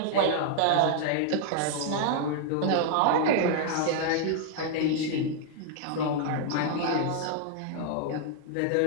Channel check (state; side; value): different; both; correlation -0.01